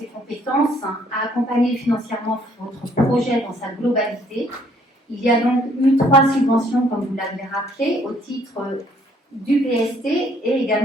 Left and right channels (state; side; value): normal; both; correlation 0.64